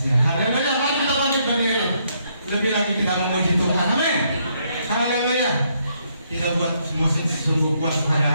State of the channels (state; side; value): inverted; both; correlation -0.73